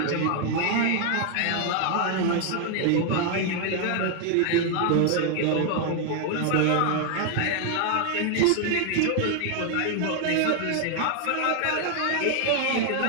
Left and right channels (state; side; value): different; both; correlation 0.00